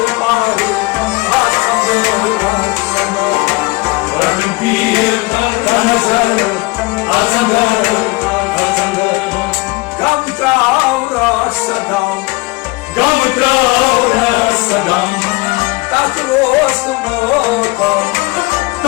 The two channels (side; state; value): right; quieter; 24.0 dB